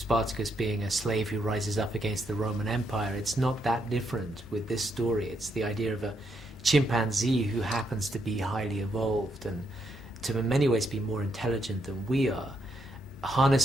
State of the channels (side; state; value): both; normal; correlation 0.77